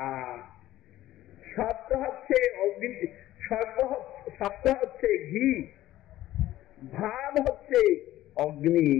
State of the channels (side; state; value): right; quieter; 14.7 dB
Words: আর শব্দ হচ্ছে অগ্নি, শব্দ হচ্ছে ঘি, ভাব হচ্ছে অগ্নি।